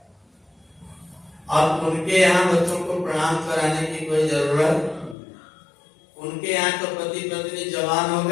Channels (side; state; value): right; drops out; at 5.2 s